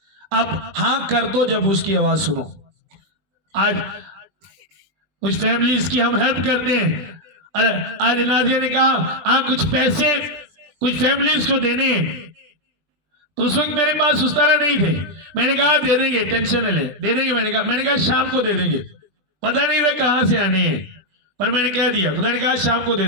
आप हाँ कर दो जब उसकी आवाज सुनो। आज कुछ फैमिलीज की हम हेल्प करते हैं। अरे आज नाजिया ने कहा हाँ कुछ पैसे कुछ फैमिलीज को देने हैं, तो उस वक्त मेरे पास उस तरह नहीं थे। मैंने कहा दे देंगे, टेंशन ले दे देंगे। मैंने कहा शाम को दे देंगे। पता नहीं था कहां से आने हैं, पर मैंने कह दिया। खुदा ने कहा शाम को दे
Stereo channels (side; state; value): left; late; 20 ms